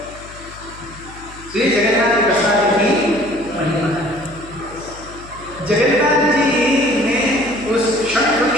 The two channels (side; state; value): left; noise; hum, 18 dB below the sound